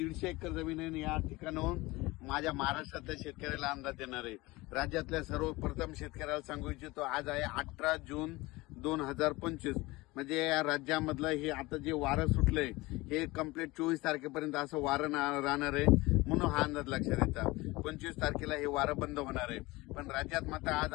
एकर जमीन आहे. या ठिकाणाहून माझ्या महाराष्ट्रातल्या शेतकऱ्याला अंदाज देणार आहे. राज्यातल्या सर्वप्रथम शेतकऱ्याला सांगू इच्छितो, आज आहे 18 जून 2025. म्हणजे या राज्यामधलं हे आता जे वारं सुटलंय हे कंप्लीट 24 तारखेपर्यंत असं वारं राहणार आहे, म्हणून हा अंदाज लक्षात येतात. 25 तारखेला हे वारं बंद होणार आहे. पण राज्यात मात्र आज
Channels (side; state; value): right; quieter; 21.4 dB